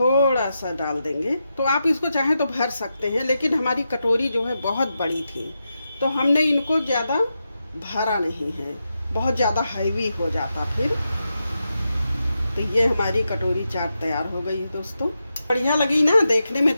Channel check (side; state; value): both; inverted; correlation -0.87